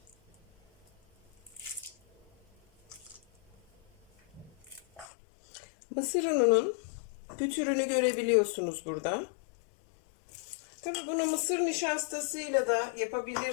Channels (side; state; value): right; drops out; at 5.1 s